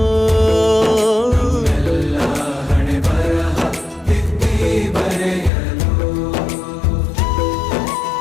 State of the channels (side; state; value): right; drops out; at 5.5 s